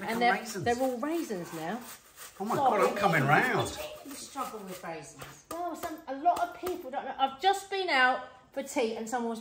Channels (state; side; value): identical; both; correlation 1.00